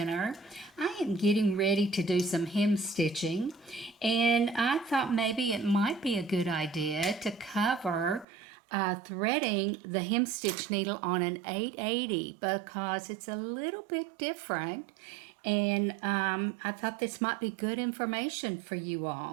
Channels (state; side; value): drops out; left; at 8.2 s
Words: I am getting ready to do some hem stitching, and I thought maybe it might be a good idea to cover threading the hem stitch needle on an 880 because it's a little bit different, and I thought this might be good information for you